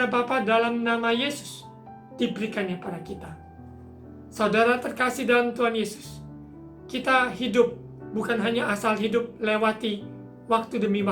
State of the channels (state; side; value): identical; both; correlation 1.00